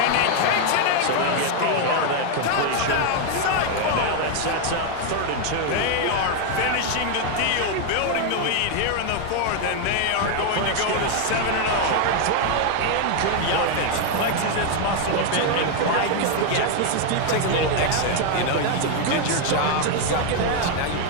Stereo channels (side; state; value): both; different; correlation 0.01